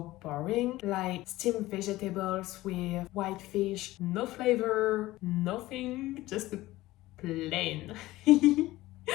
boring, like steamed vegetables with white fish, no flavor, nothing, just plain.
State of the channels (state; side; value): quieter; right; 17.5 dB